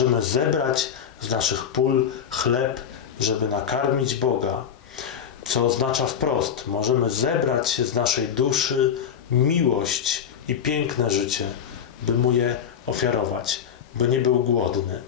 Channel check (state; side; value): quieter; right; 8.1 dB